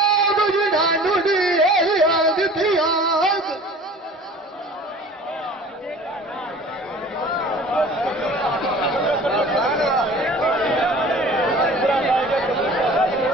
जुनानू याद थिया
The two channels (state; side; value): normal; both; correlation 0.45